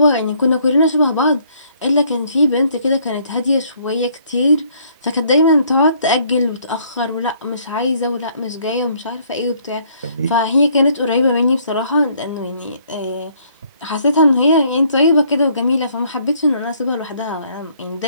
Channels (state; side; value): inverted; both; correlation -0.64